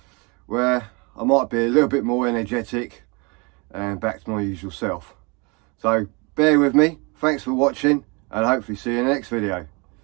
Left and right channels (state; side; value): quieter; left; 29.8 dB